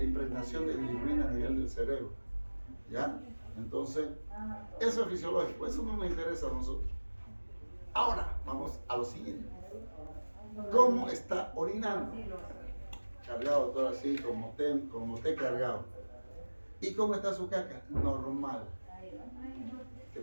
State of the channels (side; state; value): both; inverted; correlation -1.00